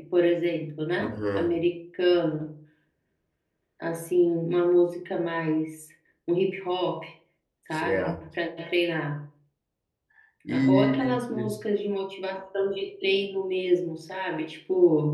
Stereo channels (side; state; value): both; identical; correlation 1.00